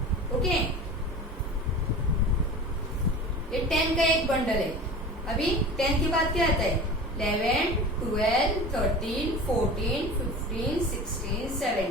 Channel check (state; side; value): normal; both; correlation 0.36